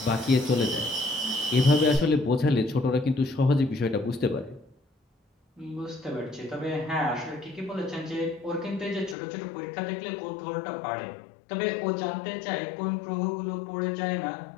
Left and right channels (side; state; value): right; drops out; at 9.2 s